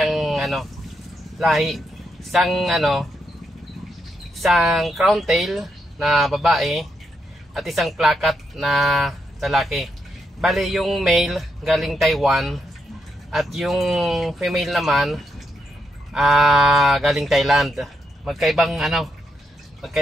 lahi. Isang crown tail na babae at isang plakat na lalaki. Bali yung male galing Taiwan at yung female naman galing Thailand. Magkaibang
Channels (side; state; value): both; normal; correlation 0.81